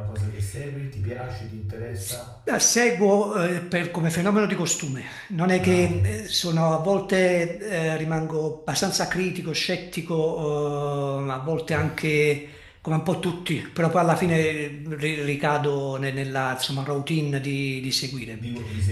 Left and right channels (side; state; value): both; identical; correlation 1.00